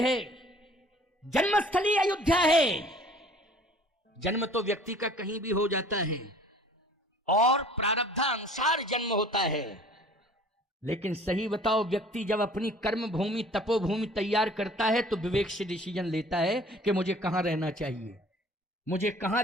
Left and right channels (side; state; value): both; normal; correlation 0.51